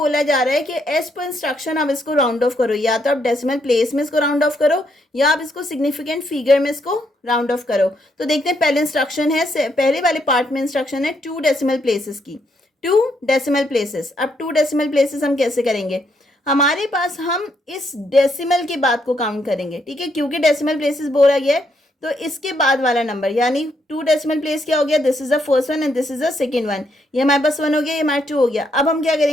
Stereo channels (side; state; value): both; normal; correlation 0.75